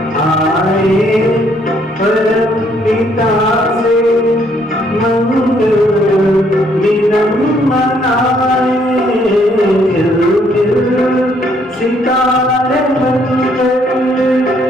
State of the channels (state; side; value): normal; both; correlation 0.68